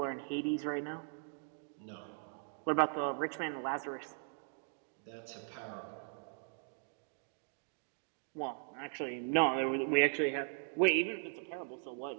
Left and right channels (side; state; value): left; silent; digital silence